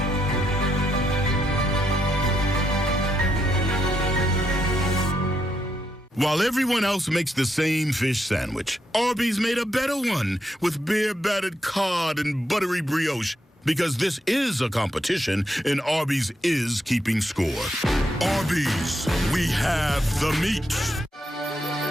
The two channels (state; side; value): normal; both; correlation 0.80